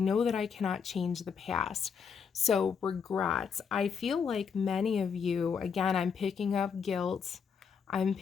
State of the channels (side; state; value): right; quieter; 6.5 dB